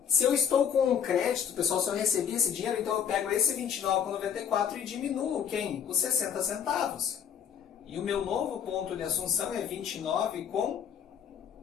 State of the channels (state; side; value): quieter; right; 8.2 dB